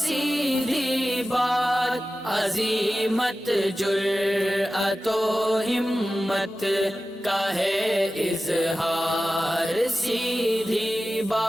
بات عزیمت جرأت و ہمت کا ہے اظہار، سیدھی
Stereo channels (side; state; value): both; normal; correlation 0.94